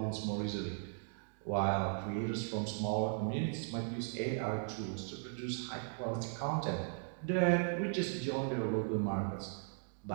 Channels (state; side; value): silent; left; digital silence